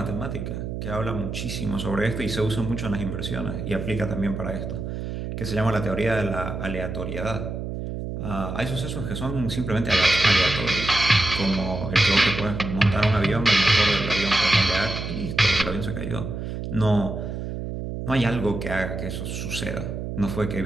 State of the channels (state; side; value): noise; right; hum, 5 dB below the sound